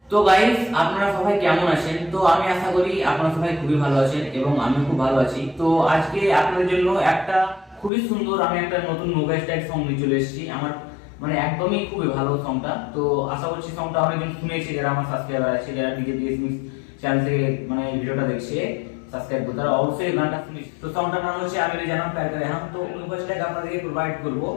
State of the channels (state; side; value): drops out; right; at 7.9 s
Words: তো গাইস, আপনারা সবাই কেমন আছেন? তো আমি আশা করি আপনারা সবাই খুবই ভালো আছেন এবং আমিও খুব ভালো আছি। তো আজকে আপনাদের জন্য একটা খুবই সুন্দর আমি একটা নতুন নোভা স্টাইল সং নিয়ে চলে এসেছি। আমার মানে একদমই খুবই ভালো সংটা। তো আশা করছি সংটা অনেকজন শুনেছে, যারা আমার সাবস্ক্রাইবার আছে, যারা ডিজে ডিএসএমএস চ্যানেল থেকে মানে ভিডিওটা দেখছে সাবস্ক্রাইব করে, তারা অবশ্যই গানটা শুনেছে। তো সংটার নাম হচ্ছে আমি জানাম প্যার করে হাম। তো নোভা স্টাইল আপনাদেরকে প্রোভাইড করবো।